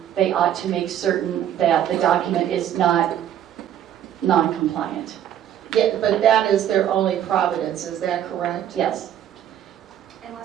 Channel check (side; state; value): left; quieter; 10.6 dB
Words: they ought to make certain that the document is not non-compliant. Yeah, but that is their only providence, is that correct? Yes.